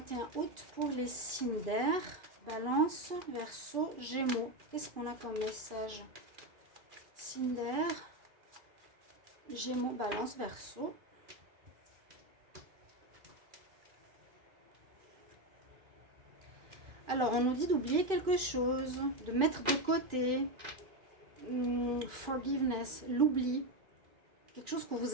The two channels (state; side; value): late; left; 2.5 ms